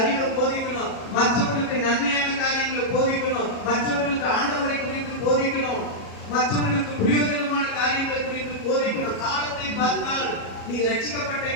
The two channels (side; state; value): right; late; 37 ms